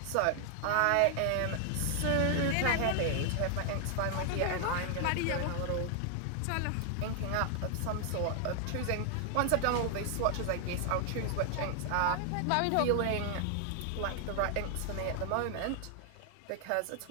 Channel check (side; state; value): both; different; correlation 0.00